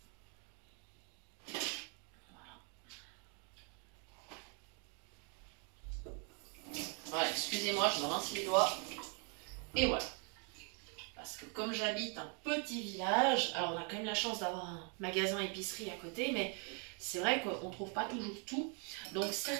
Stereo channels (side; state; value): left; quieter; 38.5 dB